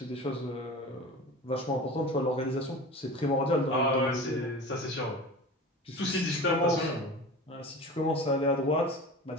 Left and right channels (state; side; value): normal; both; correlation 0.34